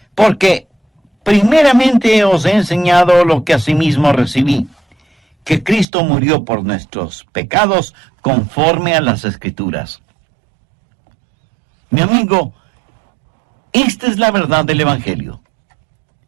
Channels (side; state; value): left; drops out; at 5.9 s